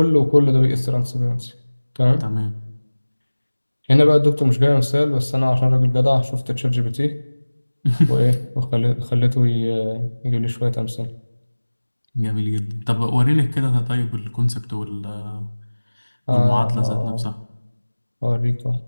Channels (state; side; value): inverted; both; correlation -1.00